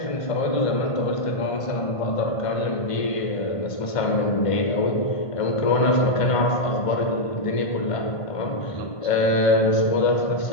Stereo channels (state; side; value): late; right; 1.5 ms